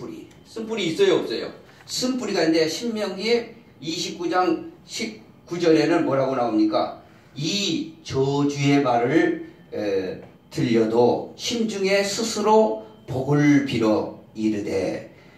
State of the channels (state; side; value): identical; both; correlation 1.00